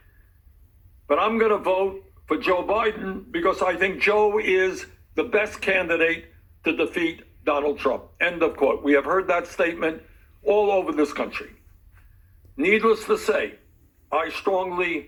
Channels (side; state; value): both; identical; correlation 1.00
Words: but I'm going to vote for Joe Biden because I think Joe is the best candidate to defeat Donald Trump." End of quote. We have heard that statement all over this country. Needless to say, I